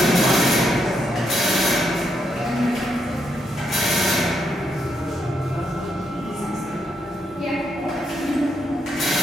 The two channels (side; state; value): both; normal; correlation 0.78